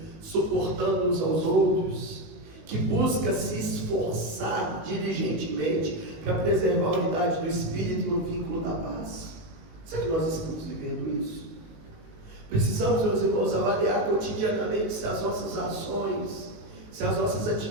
suportando uns aos outros, que busca se esforçar diligentemente para preservar a unidade do Espírito no vínculo da paz. Será que nós estamos vivendo isso? Precisamos, meus irmãos, avaliar cotidianamente se as nossas ações se as nossas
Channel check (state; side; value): late; left; 19 ms